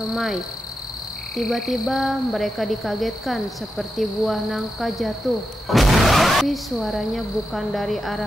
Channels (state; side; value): normal; both; correlation 0.88